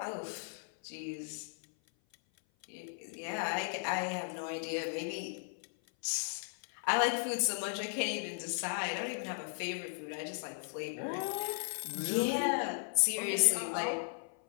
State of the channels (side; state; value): right; silent; 54 dB below the other